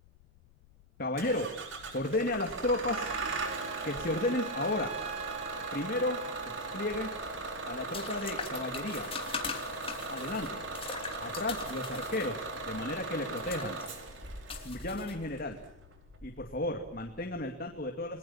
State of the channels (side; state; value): left; noise; rumble, 25 dB below the sound